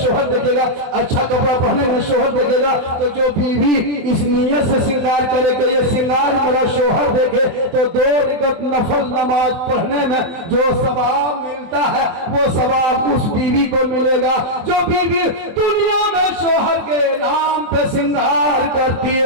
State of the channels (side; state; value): left; late; 24 ms